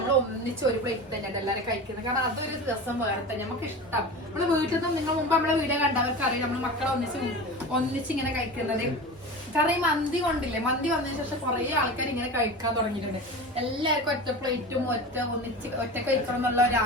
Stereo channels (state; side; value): normal; both; correlation 0.30